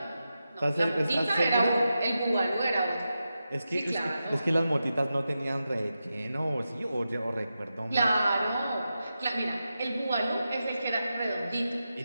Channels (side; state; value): both; inverted; correlation -0.90